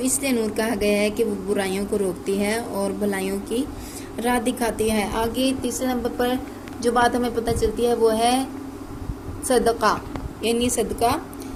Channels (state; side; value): identical; both; correlation 1.00